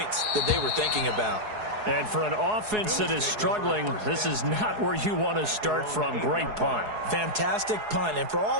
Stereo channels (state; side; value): late; left; 4.7 ms